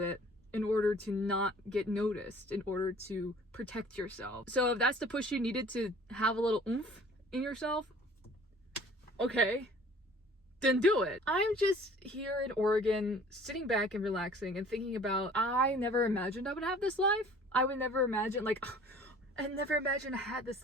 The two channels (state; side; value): normal; both; correlation 0.50